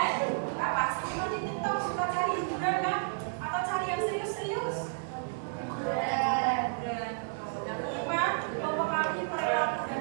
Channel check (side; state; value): left; silent; 57 dB below the other